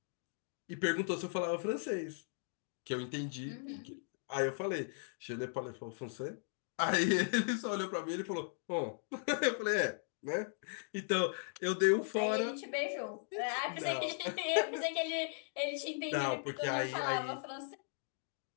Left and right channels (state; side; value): silent; right; digital silence